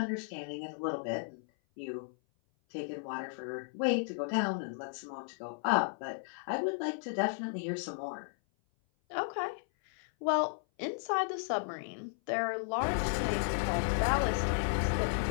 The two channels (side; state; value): right; silent; 55 dB below the other